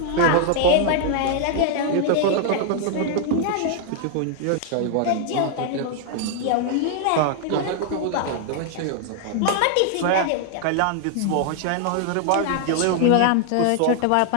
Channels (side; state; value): both; different; correlation 0.00